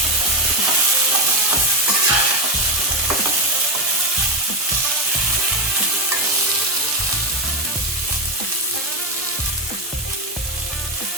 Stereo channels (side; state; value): both; normal; correlation 0.12